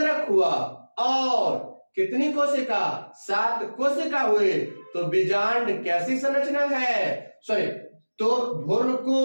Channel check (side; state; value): both; inverted; correlation -1.00